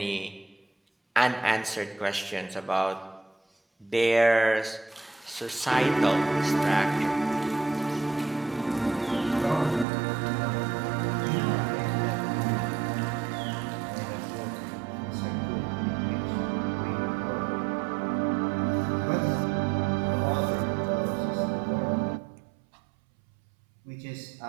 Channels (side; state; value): left; drops out; at 9.9 s